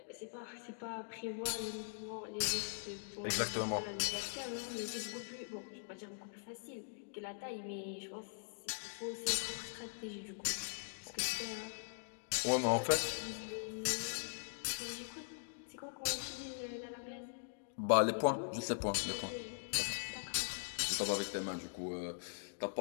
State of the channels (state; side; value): silent; right; digital silence